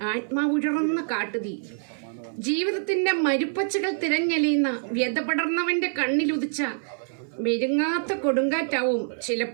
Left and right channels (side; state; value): left; silent; 61 dB below the other